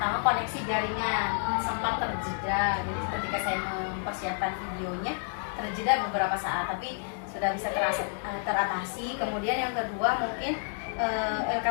koneksi jaringan sempat terjeda. Jadi ketika saya mempersiapkan videonya terjeda beberapa saat, tapi sudah bisa teratasi. Kemudian yang kedua mungkin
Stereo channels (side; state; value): right; silent; 58 dB below the other